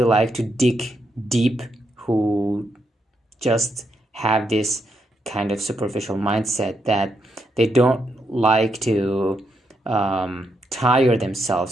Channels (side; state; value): both; normal; correlation 0.80